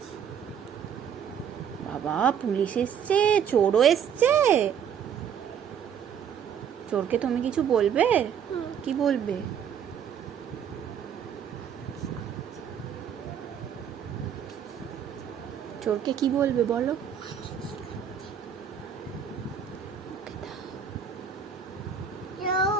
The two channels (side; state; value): left; quieter; 8.1 dB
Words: বাবা, পুলিশ এসছে, চোরও এসছে। চোরকে তুমি কিছু বলবে? কি বলবে? চোরকে কি বলবে বলো? ওকে দাও।